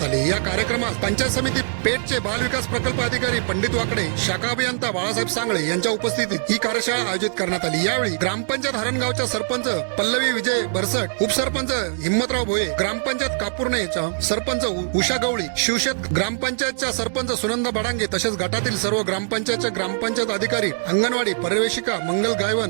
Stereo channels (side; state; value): left; silent; digital silence